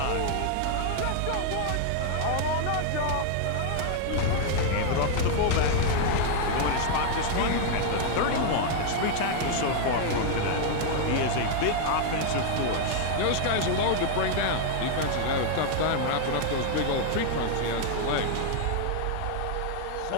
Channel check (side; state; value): both; different; correlation 0.00